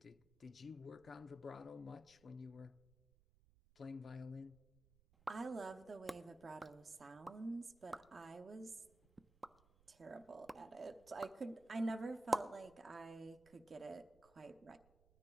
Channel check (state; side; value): noise; right; rumble, 27 dB below the sound